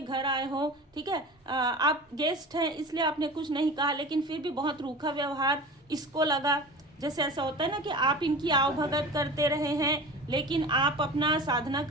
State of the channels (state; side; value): normal; both; correlation 0.35